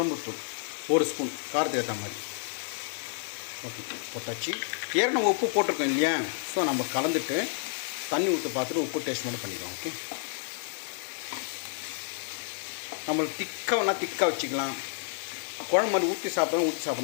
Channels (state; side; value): silent; right; 56 dB below the other